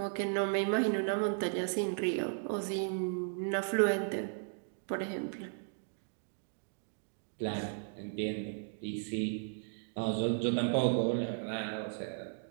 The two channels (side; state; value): left; silent; digital silence